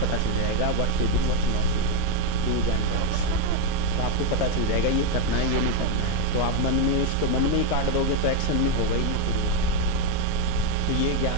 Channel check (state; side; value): different; both; correlation 0.02